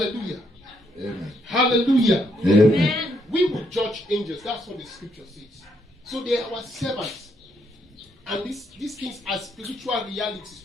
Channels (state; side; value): normal; both; correlation 0.74